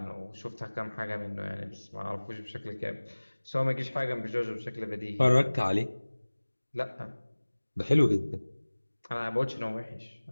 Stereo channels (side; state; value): both; inverted; correlation -1.00